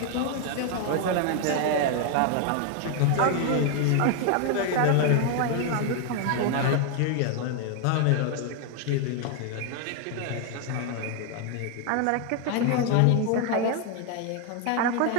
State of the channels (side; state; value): both; different; correlation 0.00